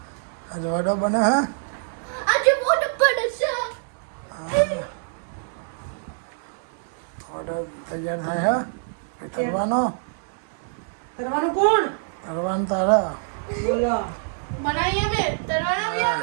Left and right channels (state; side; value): silent; left; digital silence